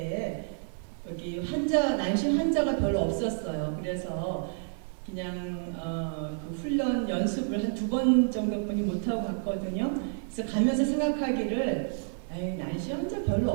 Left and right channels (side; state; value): left; silent; 58 dB below the other